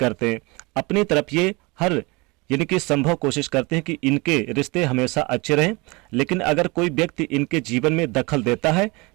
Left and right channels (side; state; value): left; quieter; 25.9 dB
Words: अपनी तरफ ये हर यानी कि संभव कोशिश करते हैं कि इनके रिश्ते हमेशा अच्छे रहें, लेकिन अगर कोई व्यक्ति इनके जीवन में दखल देता है